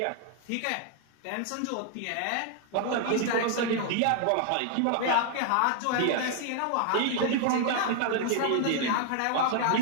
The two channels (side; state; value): both; different; correlation 0.00